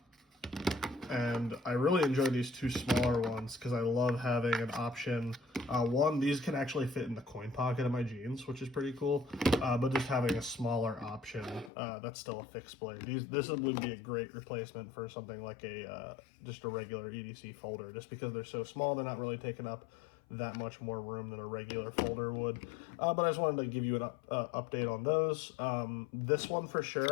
And I really enjoy these 2 smaller ones because I love having an option. One, these can actually fit in the coin pocket of my jeans, which is pretty cool. But just having a smaller option that's still a fixed blade. This would be a great replacement for something like just a regular EDC folder, just because they're so small, they're not really taking up that much more room than a regular folder would. But I just wanted to give you an update on those. This one for sure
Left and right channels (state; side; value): drops out; right; at 11.7 s